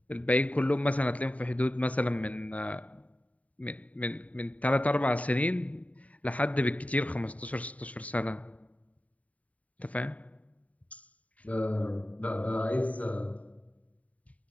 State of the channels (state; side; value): late; right; 0.069 ms